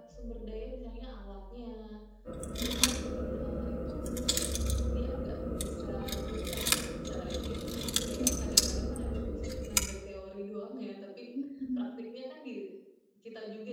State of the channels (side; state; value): both; identical; correlation 1.00